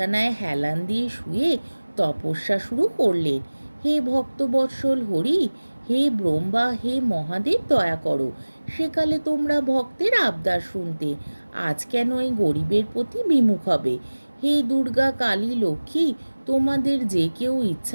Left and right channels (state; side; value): inverted; both; correlation -1.00